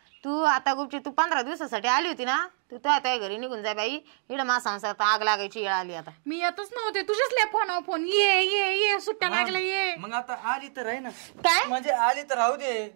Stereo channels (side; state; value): left; silent; 60 dB below the other